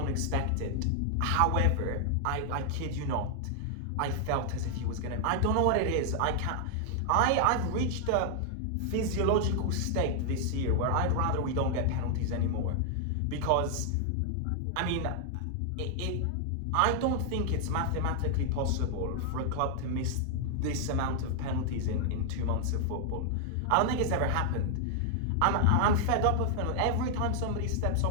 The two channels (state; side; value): different; both; correlation 0.00